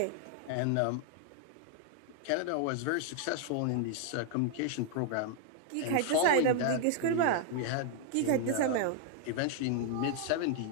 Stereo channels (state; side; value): different; both; correlation 0.00